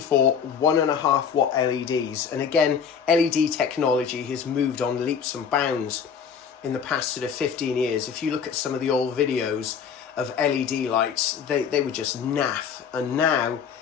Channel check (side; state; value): right; quieter; 7.0 dB